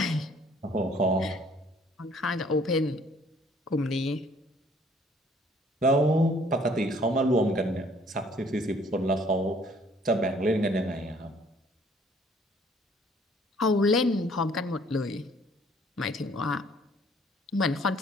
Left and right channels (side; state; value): both; normal; correlation 0.59